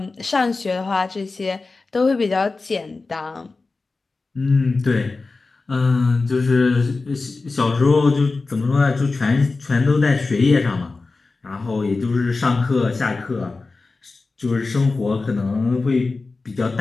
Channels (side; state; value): right; quieter; 3.8 dB